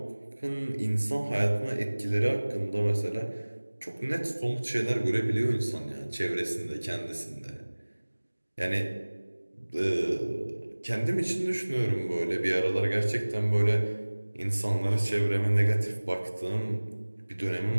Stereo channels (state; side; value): inverted; both; correlation -1.00